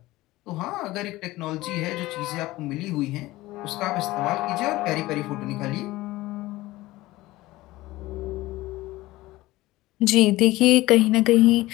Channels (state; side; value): quieter; right; 18.3 dB